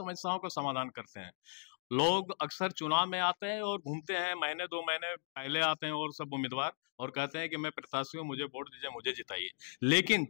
का समाधान करते हैं। लोग अक्सर चुनाव में आते हैं और घूमते हैं, महीने 2 महीने पहले आते हैं और सब उम्मीदवार, और कहते हैं कि मैं प्रत्याशी हूँ, मुझे वोट दीजिए, मुझे जिताइए। लेकिन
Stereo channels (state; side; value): silent; right; digital silence